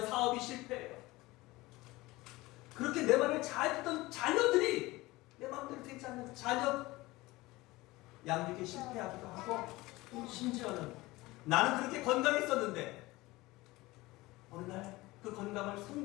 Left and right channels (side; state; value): right; quieter; 20.2 dB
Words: 사업이 실패해요. 그렇게 내 말을 잘 듣던 자녀들이 내 마음대로 되지 않는 자녀 양육에 실패하기도 하고, 심지어는 나는 그렇게 건강했었는데 어느 날 그 건강을